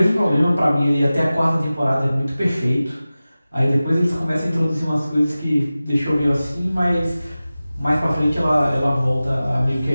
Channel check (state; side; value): inverted; both; correlation -0.96